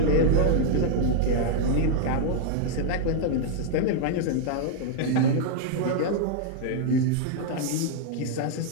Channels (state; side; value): different; both; correlation 0.00